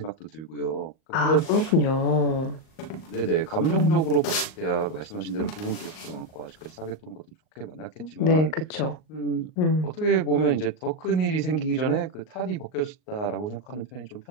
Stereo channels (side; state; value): right; late; 38 ms